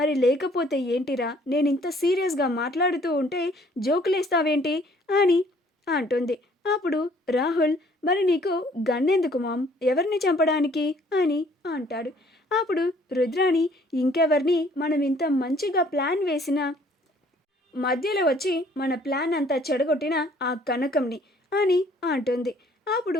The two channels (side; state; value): both; normal; correlation 0.59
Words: లేకపోతే ఏంటిరా, నేను ఇంత సీరియస్గా మాట్లాడుతూ ఉంటే జోకులేస్తావేంటి అని అంటుంది. అప్పుడు రాహుల్, మరి నీకు గన్నెందుకు మామ్, ఎవరిని చంపడానికి అని అంటాడు. అప్పుడు రుద్రాని, ఇంకెవరిని, మనం ఇంత మంచిగా ప్లాన్ వేసిన మధ్యలో వచ్చి మన ప్లాన్ అంతా చెడగొట్టిన ఆ కనకంని అని అంటుంది.